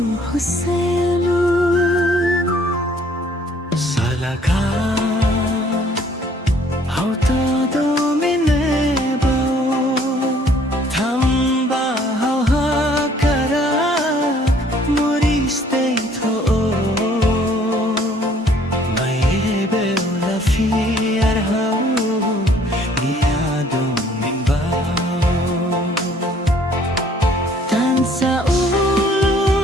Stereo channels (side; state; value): both; normal; correlation 0.60